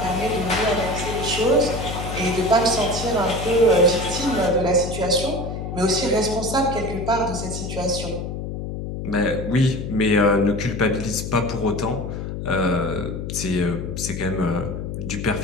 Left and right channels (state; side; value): noise; left; hum, 6 dB below the sound